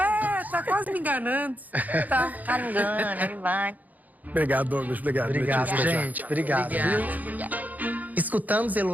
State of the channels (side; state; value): left; late; 0.080 ms